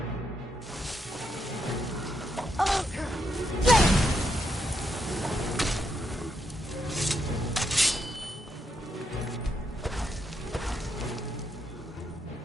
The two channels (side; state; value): both; normal; correlation 0.79